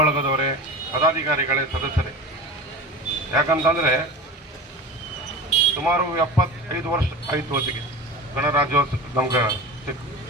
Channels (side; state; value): both; normal; correlation 0.31